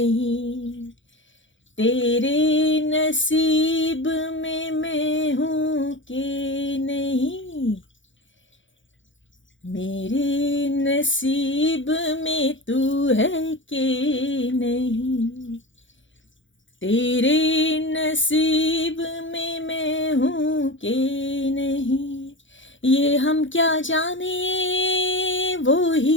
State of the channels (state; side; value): late; right; 0.56 ms